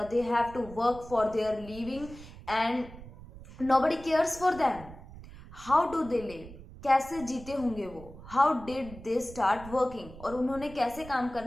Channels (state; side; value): noise; right; rumble, 16 dB below the sound